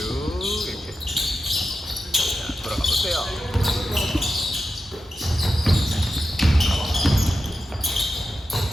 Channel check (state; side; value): normal; both; correlation 0.90